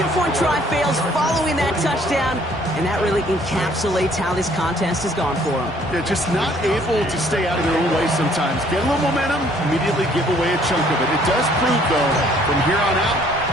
try fails following that touchdown, and that really encapsulates how this contest has gone for them. They're just not able to stay out of their own way sometimes. Get a little momentum, immediately give away a chunk of it. It does prove, though, from here on out,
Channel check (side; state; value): both; normal; correlation 0.60